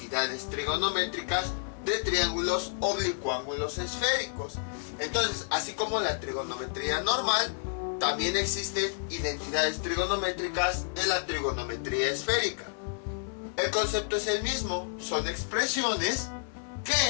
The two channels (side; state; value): right; silent; 58 dB below the other